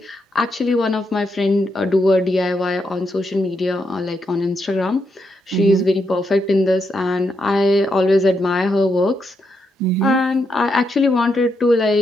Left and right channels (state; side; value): normal; both; correlation 0.81